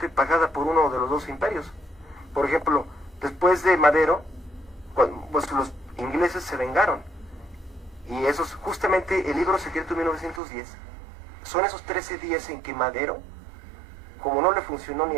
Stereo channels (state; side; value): drops out; left; at 10.4 s